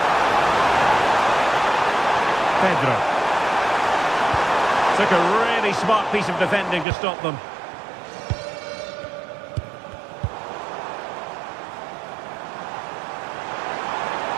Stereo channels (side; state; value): left; drops out; at 6.9 s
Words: Pedro. Took a really smart piece of defending to stop them.